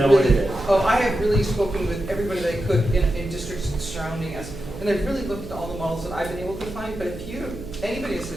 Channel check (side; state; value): right; noise; hum, 12 dB below the sound